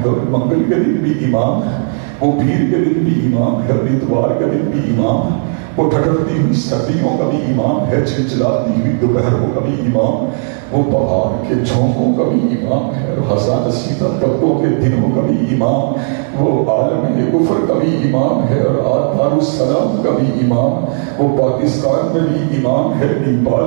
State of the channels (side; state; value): left; silent; digital silence